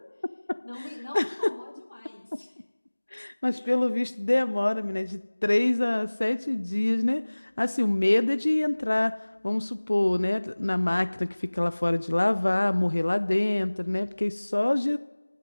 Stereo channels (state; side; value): inverted; both; correlation -1.00